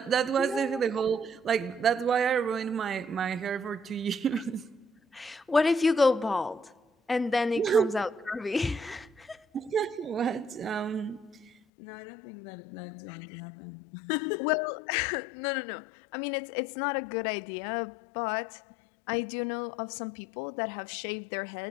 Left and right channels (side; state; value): right; drops out; at 11.5 s